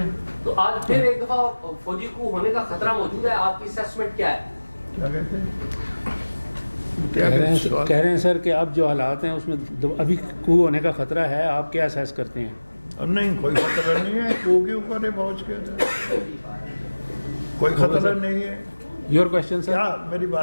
تو آج پھر ایک دفعہ فوجی کو ہونے کا خطرہ موجود ہے, آپ کی اسیسمنٹ کیا ہے؟ کیا کہتے ہیں؟ کہہ رہے ہیں سر کہ اب جو حالات ہیں اس میں ابھی کو ہونے کا خطرہ ہے, آپ کیا اسیس کرتے ہیں؟ نہیں, کوئی خطرہ نہیں ہے. کو کے اوپر ہے پہنچ کے, کوئی خطرہ نہیں ہے. Your question sir. کیا میری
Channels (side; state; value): both; inverted; correlation -1.00